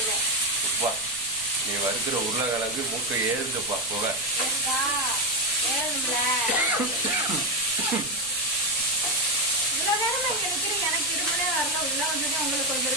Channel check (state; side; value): noise; right; rumble, 22 dB below the sound